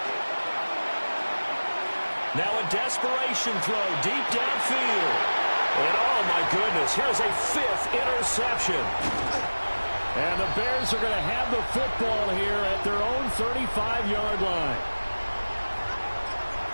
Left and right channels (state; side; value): inverted; both; correlation -1.00